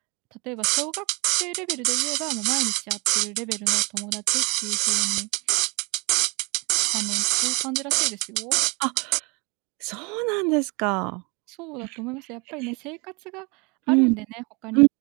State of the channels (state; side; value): quieter; left; 29.4 dB